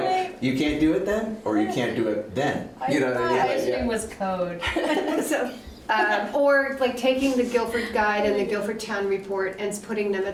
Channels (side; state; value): both; identical; correlation 1.00